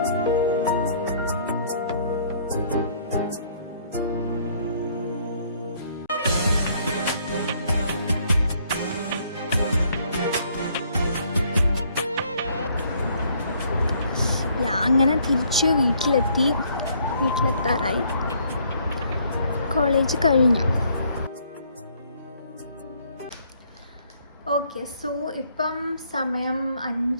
അങ്ങനെ തിരിച്ച് വീട്ടിലെത്താറായി. കോളേജ് കഴിഞ്ഞു. ഓക്കെ, സോ ഇപ്പം സമയം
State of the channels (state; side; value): inverted; both; correlation -0.64